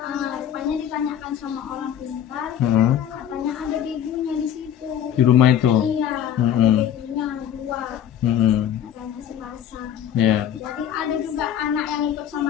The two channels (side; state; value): right; quieter; 10.1 dB